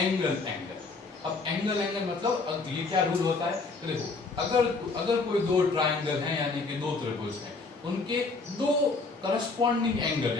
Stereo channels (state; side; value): quieter; right; 3.9 dB